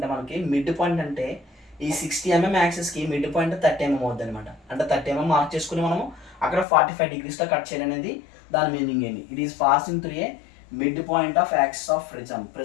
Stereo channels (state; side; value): drops out; right; at 6.7 s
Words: మనకి మిడ్ పాయింట్ అంటే ఈ 60 mm యాక్సిస్కి మిడ్ పాయింట్ 30 mm అవుద్ది అనమాట. అంటే 30 mm మార్క్ చేసుకుని మనము అక్కడ 45 degreesతో కట్ చేయాలనేది దాని మీనింగ్ ఏంటి. It is passing through a mid point of axis of